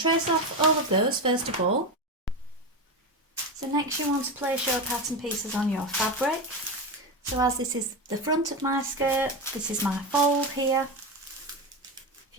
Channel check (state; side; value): normal; both; correlation 0.17